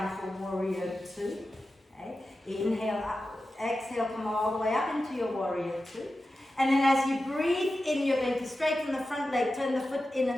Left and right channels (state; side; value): normal; both; correlation 0.93